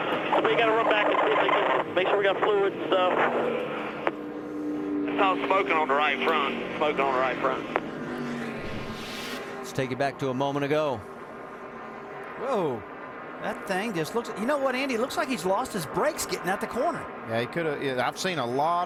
We got to run back and see if they can make sure we got fluid and stuff. It's all smoking on the right front. Smoking on the right front. Let's take it back to a moment ago. Whoa. That thing just looks, you know what, Andy? It looks like he's lost his brakes getting at the corner. Yeah, he could have. Yeah, I've seen a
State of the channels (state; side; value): identical; both; correlation 1.00